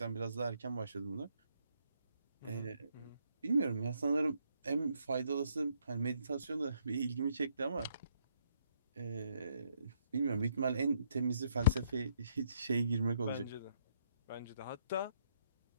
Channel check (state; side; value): inverted; both; correlation -0.71